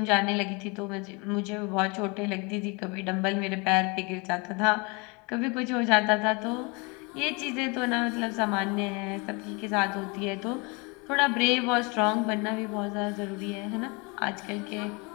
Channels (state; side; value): quieter; right; 29.6 dB